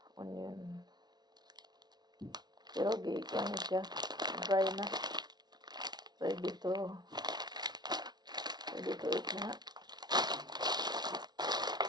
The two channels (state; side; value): late; left; 0.20 ms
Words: Onion. Pero gikan siya. Dry na. Ready to eat na.